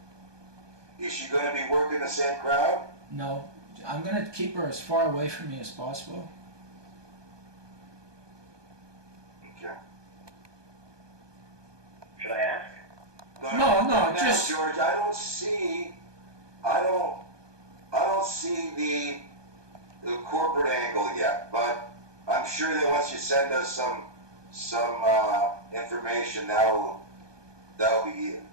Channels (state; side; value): late; left; 1.2 ms